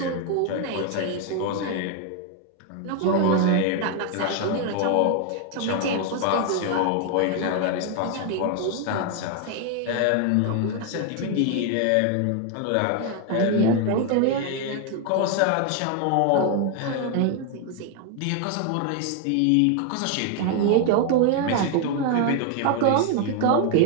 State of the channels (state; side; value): different; both; correlation 0.01